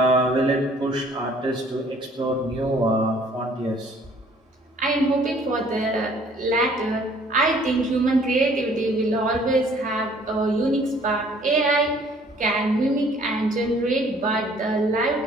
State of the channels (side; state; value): both; normal; correlation 0.57